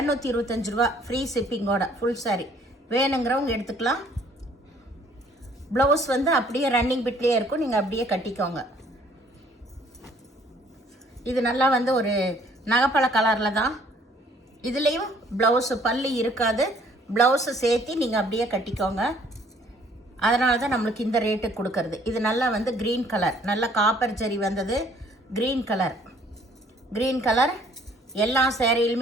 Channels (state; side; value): normal; both; correlation 0.60